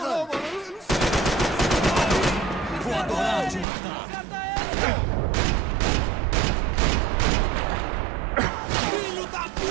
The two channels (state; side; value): drops out; left; at 3.7 s